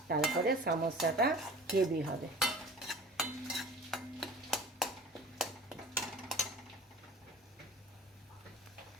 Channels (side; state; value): both; normal; correlation 0.42